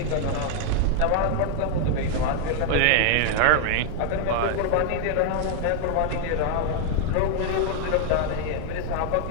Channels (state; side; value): different; both; correlation 0.00